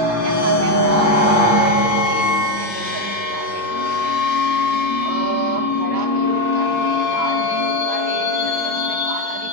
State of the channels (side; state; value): left; late; 5.9 ms